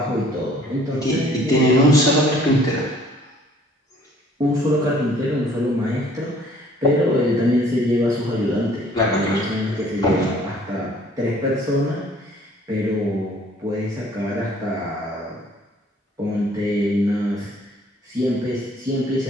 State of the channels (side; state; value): both; normal; correlation 0.57